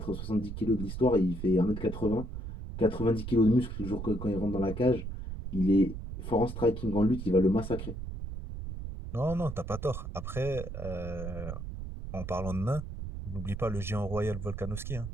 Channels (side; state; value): right; noise; rumble, 7 dB below the sound